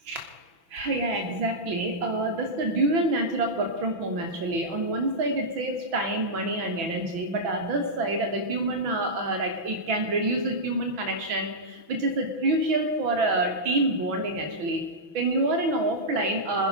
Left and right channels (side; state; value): left; late; 6.0 ms